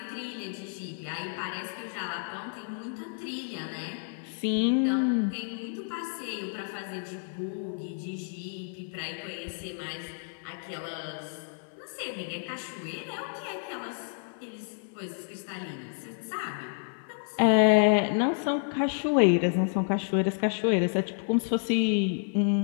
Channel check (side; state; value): right; silent; 58 dB below the other